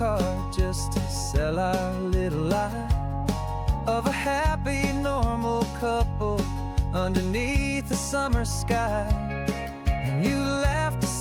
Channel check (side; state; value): both; identical; correlation 1.00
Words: just to sell our little lie of a happy, normal couple underneath the summer sky. And you laughed a